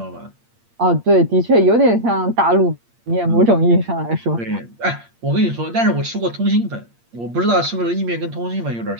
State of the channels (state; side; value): late; left; 8.6 ms